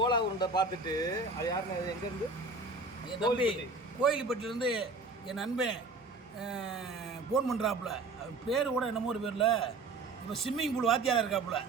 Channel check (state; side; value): quieter; left; 3.6 dB